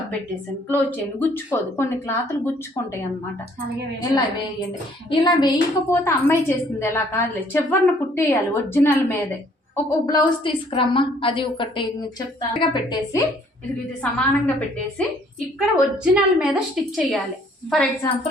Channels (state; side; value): normal; both; correlation 0.61